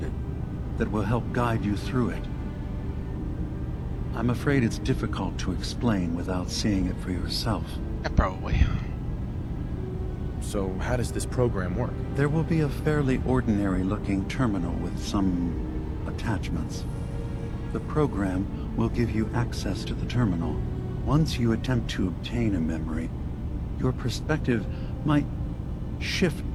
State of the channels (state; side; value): identical; both; correlation 1.00